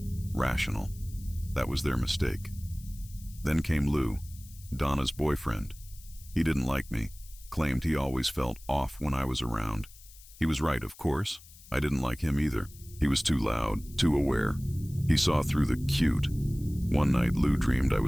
rational. That was their mistake. Then came Lou, Donna's boyfriend. He didn't like me, claimed he always felt off when I was around. He was right, of course. I didn't like him either. He was too loud, too aware. He saw through the cute. One night, Lou dreamed I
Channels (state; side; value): noise; left; hiss, 21 dB below the sound